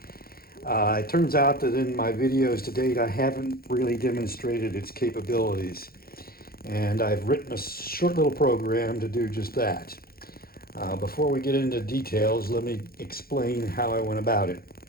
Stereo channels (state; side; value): late; right; 0.44 ms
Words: It turns out that in my videos to date, I haven't really demonstrated its capabilities, and I've written a short little program to do just that. Before we get into details, let me explain how I went about it.